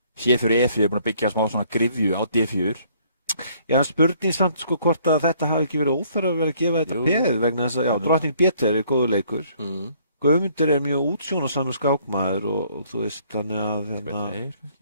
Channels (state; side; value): inverted; both; correlation -0.62